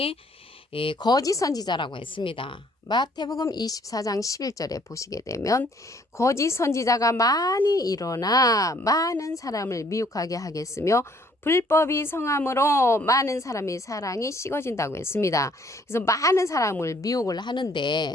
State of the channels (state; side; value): normal; both; correlation 0.62